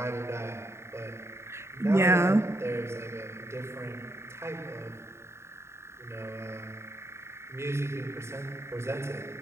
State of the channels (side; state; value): left; late; 0.13 ms